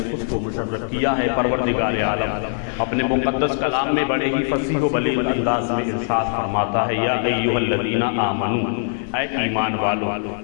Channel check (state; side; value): silent; right; 63 dB below the other